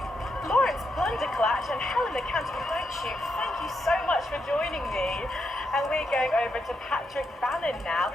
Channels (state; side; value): normal; both; correlation 0.82